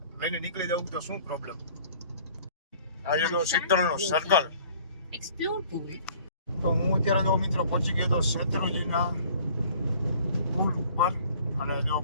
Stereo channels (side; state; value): both; inverted; correlation -0.52